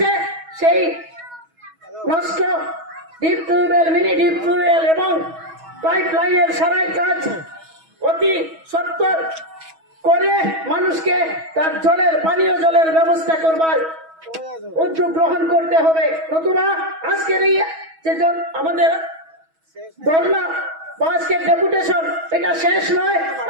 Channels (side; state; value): left; late; 6.2 ms